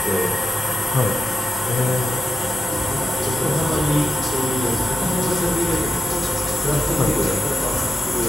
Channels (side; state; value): both; normal; correlation 0.89